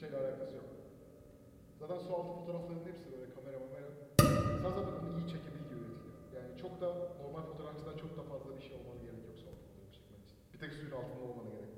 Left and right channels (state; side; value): identical; both; correlation 1.00